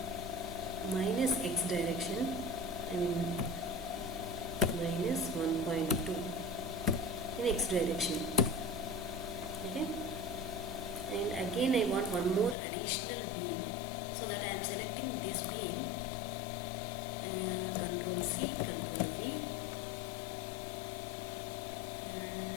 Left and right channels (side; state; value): right; drops out; at 12.6 s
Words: minus x direction, I mean minus 1.2 in x direction. Okay. And again I want one more additional beam, so that I am selecting this beam, Control C, Control V,